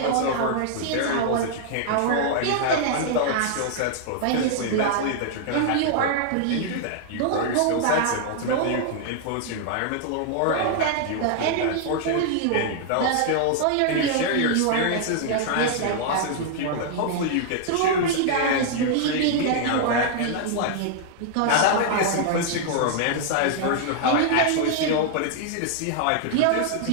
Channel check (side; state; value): both; different; correlation -0.01